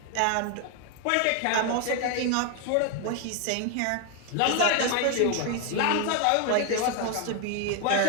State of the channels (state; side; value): different; both; correlation 0.01